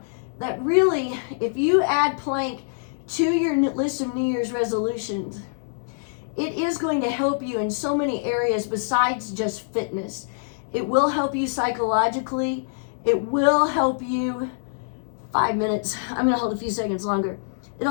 that really, if you add plank to your list of New Year's resolutions, it is going to help you in so many areas besides just fitness. It will help you psychologically. It will help you 5 minutes. I'm going to hold a few seconds longer.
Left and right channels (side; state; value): right; silent; digital silence